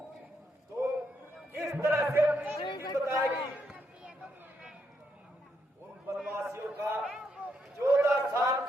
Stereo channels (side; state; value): both; normal; correlation 0.78